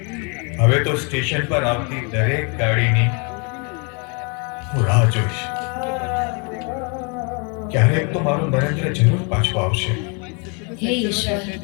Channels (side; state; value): right; quieter; 34.6 dB